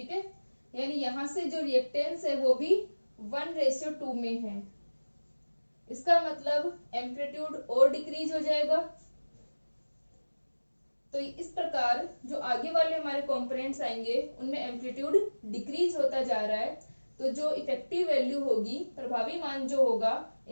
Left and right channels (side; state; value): both; inverted; correlation -1.00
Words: है, यानी यहां से जो रिएक्टेंस है वो भी 1:2 में है। इसका मतलब एम्पलीट्यूड और डिक्रीज हो जाएगा। तो इस प्रकार जो आगे वाले हमारे कंपोनेंट्स आएंगे उनमें एम्पलीट्यूड डिक्रीज होता जा रहा है। तो जो इफेक्टिव वैल्यू होगी, प्रभावी मान जो होगा